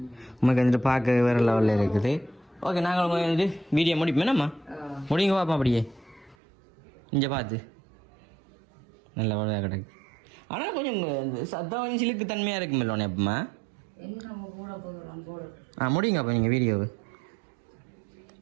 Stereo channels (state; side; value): drops out; left; at 6.4 s